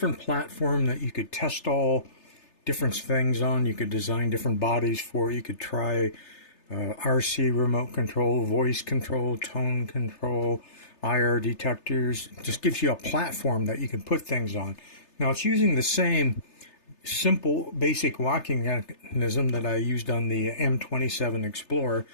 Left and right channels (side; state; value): right; late; 3.3 ms